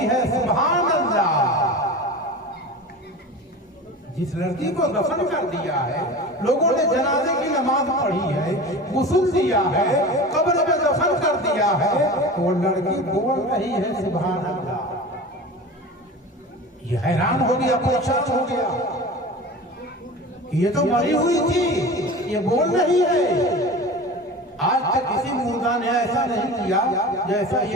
है सुभान अल्लाह। जिस लड़की को दफन कर दिया है, लोगों ने जनाजे की नमाज पढ़ी है, गुस्ल दिया है, कब्र में दफन कर दिया है, वो लड़की बोल रही है सुभान अल्लाह। ये हैरान हो गया, परेशान हो गया, ये तो मरी हुई थी, ये बोल रही है। आज तक किसी मुर्दा ने ऐसा नहीं किया जैसा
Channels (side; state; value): both; normal; correlation 0.33